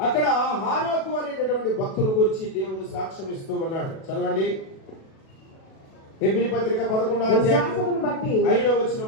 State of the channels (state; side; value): late; right; 37 ms